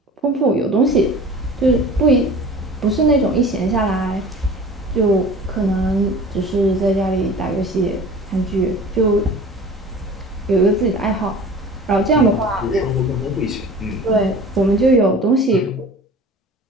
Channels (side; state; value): both; normal; correlation 0.41